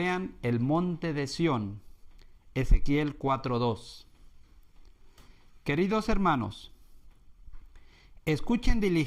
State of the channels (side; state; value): both; identical; correlation 1.00